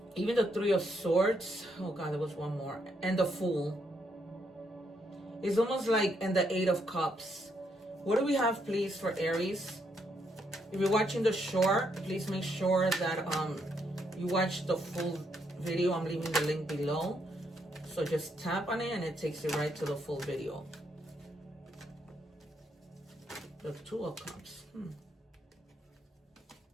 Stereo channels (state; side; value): normal; both; correlation 0.76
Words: Even the Three of Swords. Oh God, there was one more. And the Fool. It's almost like, and the Eight of Cups. What do we have, please, for Aries? If you're watching the short, please make sure that you watch the full video. I'm leaving the link below. So just tap on it and it takes you right to the full video. The Two of Cups.